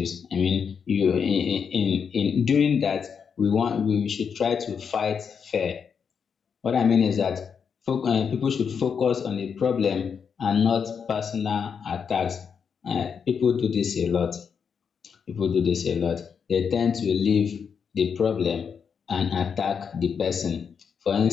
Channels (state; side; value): quieter; right; 6.6 dB